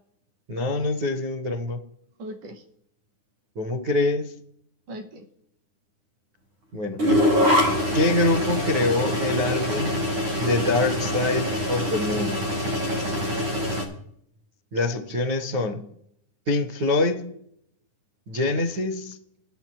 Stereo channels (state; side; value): late; left; 9.8 ms